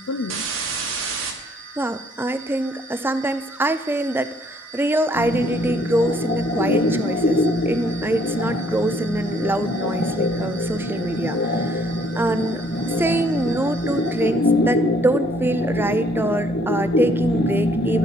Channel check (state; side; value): normal; both; correlation 0.63